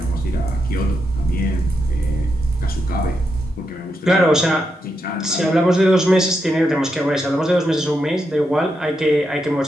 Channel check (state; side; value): normal; both; correlation 0.84